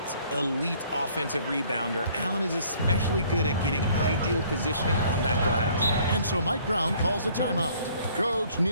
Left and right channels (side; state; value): both; inverted; correlation -0.59